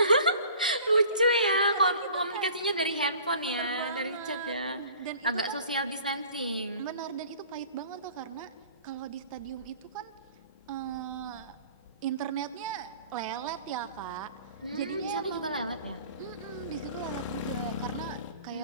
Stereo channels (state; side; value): inverted; both; correlation -0.48